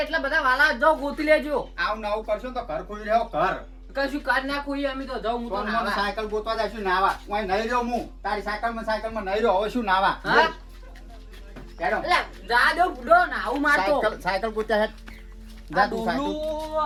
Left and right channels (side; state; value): both; identical; correlation 1.00